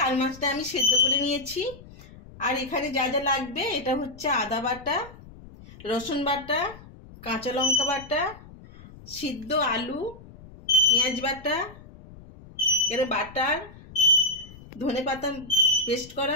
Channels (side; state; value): left; noise; rumble, 19 dB below the sound